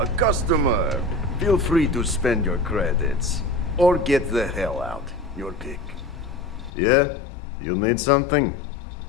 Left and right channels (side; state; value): right; drops out; at 6.7 s